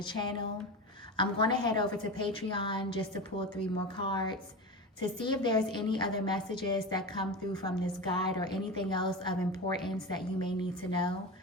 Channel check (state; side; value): normal; both; correlation 0.24